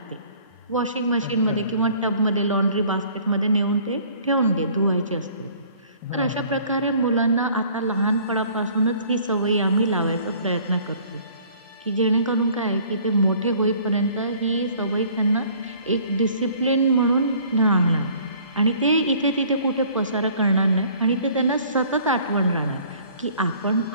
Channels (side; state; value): both; inverted; correlation -0.54